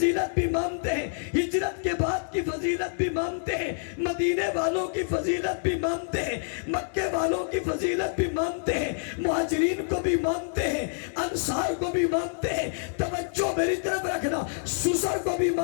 بھی مانتے ہیں, ہجرت کے بعد کی فضیلت بھی مانتے ہیں, مدینے والوں کی فضیلت بھی مانتے ہیں, مکے والوں کی فضیلت بھی مانتے ہیں, مہاجرین کو بھی مانتے ہیں, انصار کو بھی مانتے ہیں. توجہ میری طرف رکھنا, سسر کو بھی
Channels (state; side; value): silent; right; digital silence